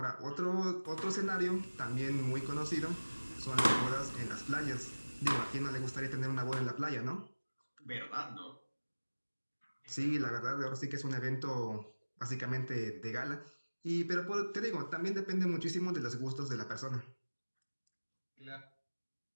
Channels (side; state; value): both; inverted; correlation -1.00